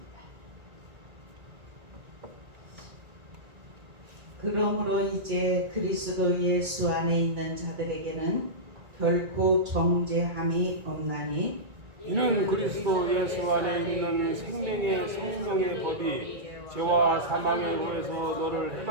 그러므로 이제 그리스도 예수 안에 있는 자들에게는 결코 정죄함이 없나니 이는 그리스도 예수 안에 있는 생명의 성령의 법이 죄와 사망의 후에서 너를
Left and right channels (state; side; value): late; left; 1.9 ms